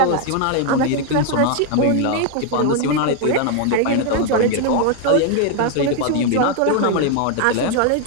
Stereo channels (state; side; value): different; both; correlation 0.01